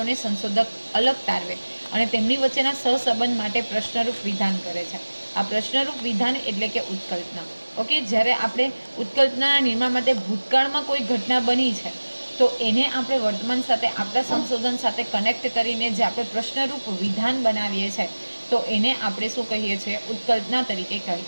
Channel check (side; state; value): both; inverted; correlation -1.00